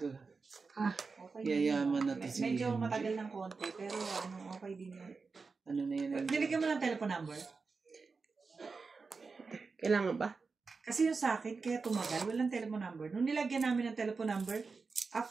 Ah, Okay. Yayaman na to si Medyo MJ. matagal ng konti, pero ano, okay din yun. Ano na yun? Nilagyan mo ng telephone number? Kailangan ba? Kasi yung sa akin, kaya tumagal, walang telephone number. Nung nilagyan namin ng telephone number,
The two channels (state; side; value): quieter; left; 4.5 dB